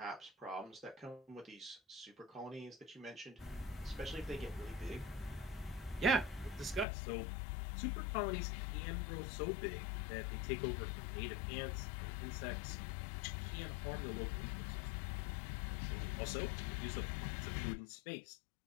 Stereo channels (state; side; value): drops out; right; at 6.9 s